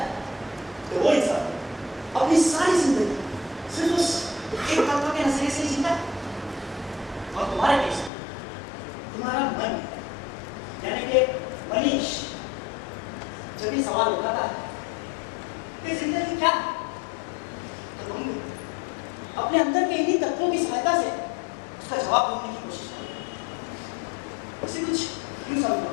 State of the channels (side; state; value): right; drops out; at 8.1 s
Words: तो वो इंसान अपनी सारी जिंदगी सिर्फ उस एक तत्व के नजरिए से ही जीता। और तुम्हारे केस में तुम्हारा मन यानी कि मनीष जब भी सवाल उठाता है कि जिंदगी क्या है, तो तुम अपने अंदर के इन्हीं तत्वों की सहायता से उसका जवाब ढूंढने की कोशिश करो। इसे कुछ क्यों समझो